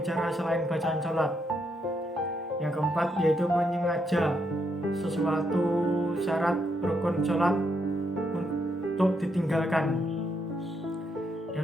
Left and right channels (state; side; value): normal; both; correlation 0.78